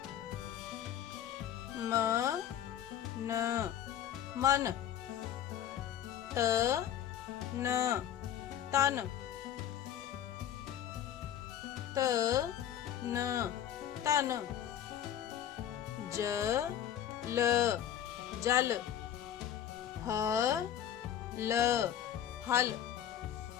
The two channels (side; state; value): right; quieter; 10.4 dB